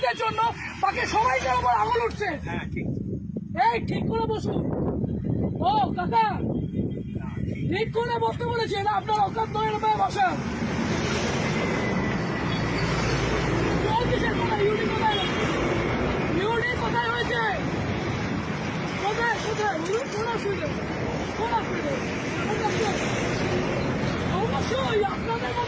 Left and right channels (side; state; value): both; identical; correlation 1.00